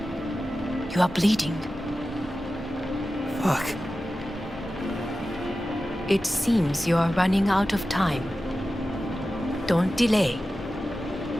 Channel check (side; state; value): left; noise; hum, 22 dB below the sound